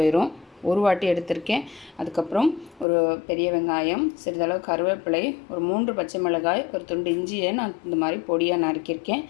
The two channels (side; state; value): right; drops out; at 2.9 s